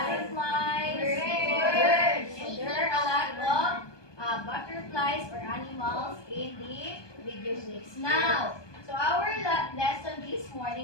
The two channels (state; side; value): late; right; 1.2 ms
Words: Birds. So there are a lot of butterflies or animals in the video clips. Now, so our lesson this